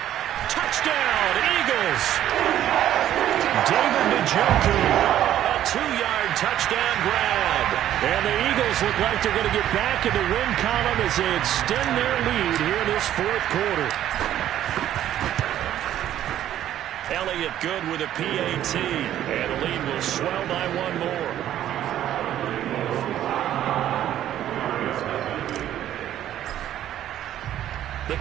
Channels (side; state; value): left; quieter; 11.8 dB